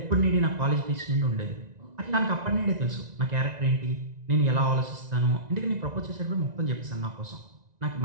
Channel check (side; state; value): left; late; 1.9 ms